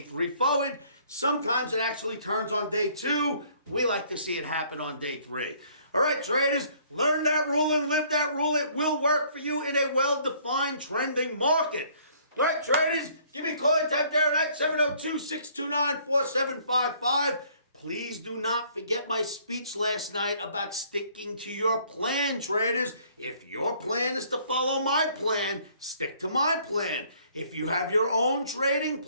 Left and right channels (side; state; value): both; inverted; correlation -0.60